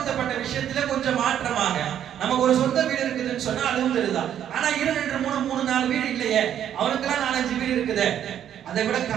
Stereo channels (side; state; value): left; quieter; 10.1 dB